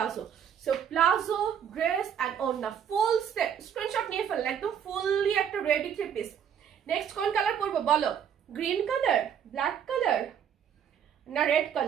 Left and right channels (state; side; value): quieter; left; 8.5 dB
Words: So palazzo dress and ওড়না ফুল সেট, স্ক্রিনশট নিয়ে ফেললে একদম ফুললি একটা রেডি 3 পিস। নেক্সট কোন কালার পরবো বলো? গ্রিন কালার, ব্ল্যাক কালার না রেড